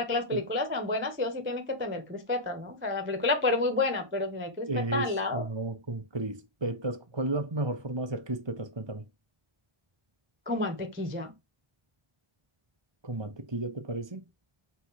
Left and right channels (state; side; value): late; left; 1.2 ms